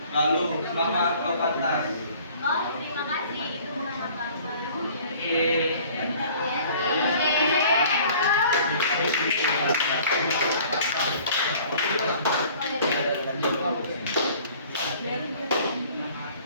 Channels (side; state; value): both; inverted; correlation -0.51